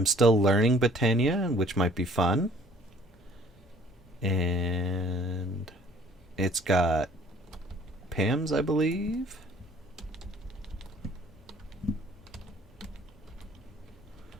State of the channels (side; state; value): both; normal; correlation 0.55